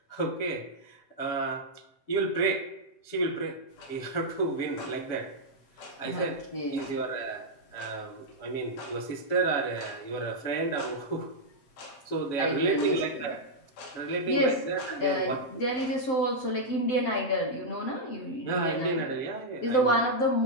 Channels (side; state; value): right; late; 7.8 ms